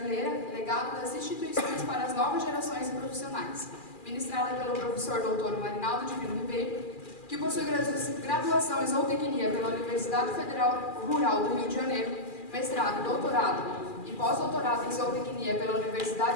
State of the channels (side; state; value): right; late; 2.4 ms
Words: legado das instituições para as novas gerações de profissionais, ministrada pelo professor Dr. Marinaldo Divino Ribeiro, que possui graduação em Zootecnia pela Universidade Federal Rural do Rio de Janeiro, mestrado, doutorado e pós-doutorado em Zootecnia pela